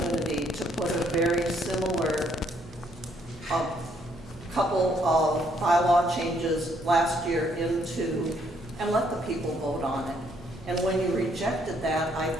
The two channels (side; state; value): both; normal; correlation 0.69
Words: to put a very similar couple of bylaw changes last year into, and let the people vote on it. And when you rejected that, I